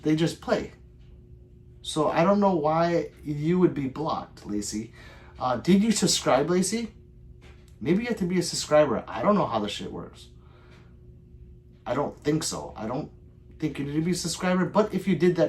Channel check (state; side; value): identical; both; correlation 1.00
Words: they just play. So I don't know why you would be blocked, Lacey. Did you subscribe, Lacey? Maybe you have to be a subscriber. I don't know how this shit works. I don't think so. I don't think you need to be a subscriber, but if you did